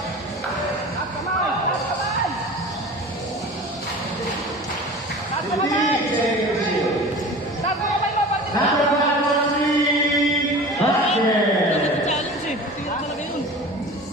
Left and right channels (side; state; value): both; normal; correlation 0.37